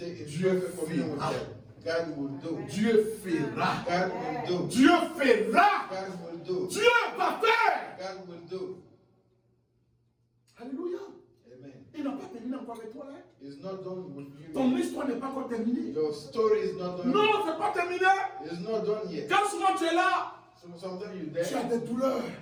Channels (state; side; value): identical; both; correlation 1.00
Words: in Dieu perfect communion with fera. God. God will do. Dieu fera. God will do. Dieu fera. God will do. Dieu va faire. God will do. Alléluia. Amen. Il n'a pas terminé encore avec toi. Hein? It's not done with you. Ton histoire n'est pas encore terminée. Your story is not done. Non, c'est pas terminé. It's not done yet. Quand souvent tu es là, So sometimes you're tu as there, des douleurs.